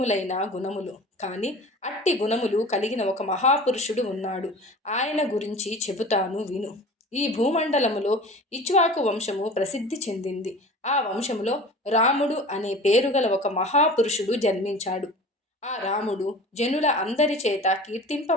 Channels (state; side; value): normal; both; correlation 0.39